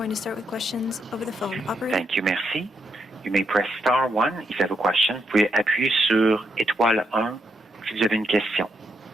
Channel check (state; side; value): normal; both; correlation 0.79